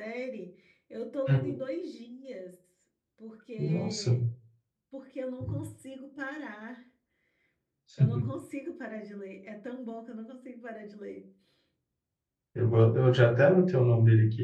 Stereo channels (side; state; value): both; identical; correlation 1.00